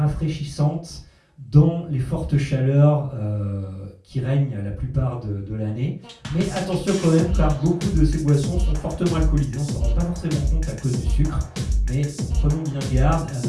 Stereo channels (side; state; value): both; identical; correlation 1.00